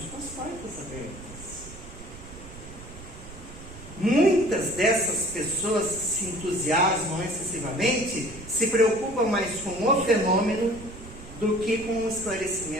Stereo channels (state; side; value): noise; right; rumble, 15 dB below the sound